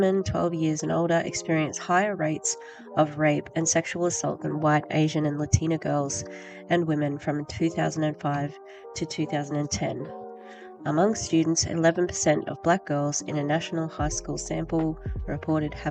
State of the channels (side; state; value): both; identical; correlation 1.00